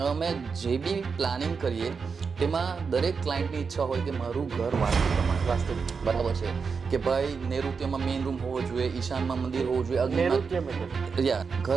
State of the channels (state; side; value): quieter; left; 5.4 dB